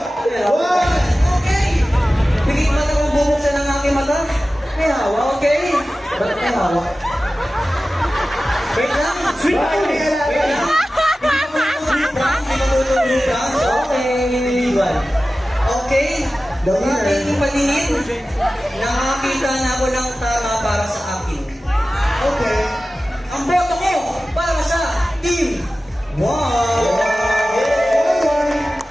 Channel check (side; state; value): both; normal; correlation 0.95